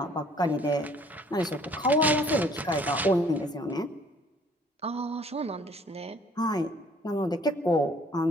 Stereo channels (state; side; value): normal; both; correlation 0.58